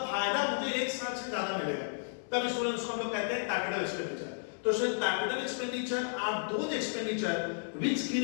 फायदा मुझे 1 साल से ज्यादा मिलेगा, तब स्टूडेंट उसको हम लोग कहते हैं कैपिटल एक्सपेंडिचर। तो student capital expenditure are those expenditure which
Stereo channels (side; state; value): right; silent; 56 dB below the other